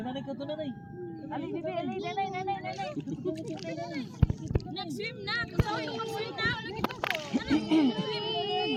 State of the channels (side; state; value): both; identical; correlation 1.00